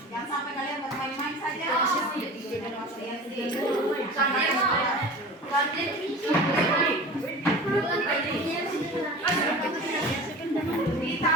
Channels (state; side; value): normal; both; correlation 0.36